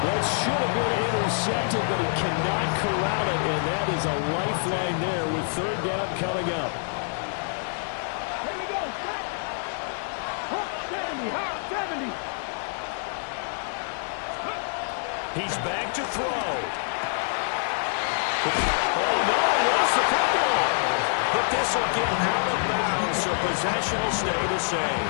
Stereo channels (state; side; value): silent; right; 61 dB below the other